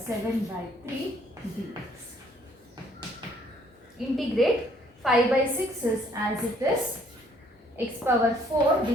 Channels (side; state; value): both; normal; correlation 0.63